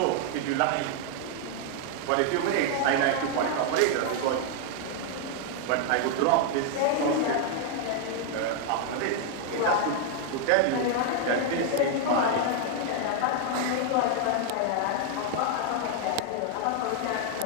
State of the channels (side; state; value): both; different; correlation 0.00